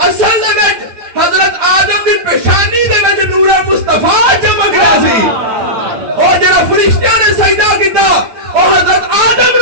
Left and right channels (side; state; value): left; late; 8.9 ms